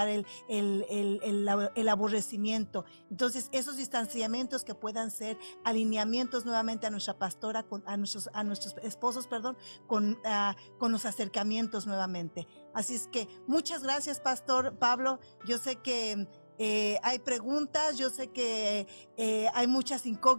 el aborrecimiento. Entonces, esos distanciamientos que puedan ser alineamientos nuevamente a nuestra pastora, a nuestros esposos, perdón, con los acercamientos nuevamente. Así es que muchas gracias, Pastor Pablo. Yo sé que hay preguntas, yo sé que hay muchas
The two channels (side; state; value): both; inverted; correlation -1.00